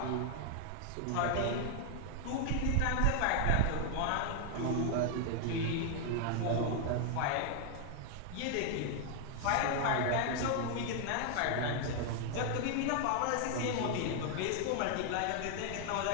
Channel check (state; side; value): different; both; correlation 0.00